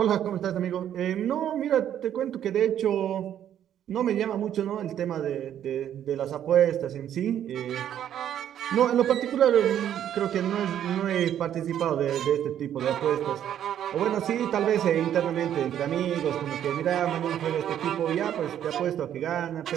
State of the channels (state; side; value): quieter; left; 10.4 dB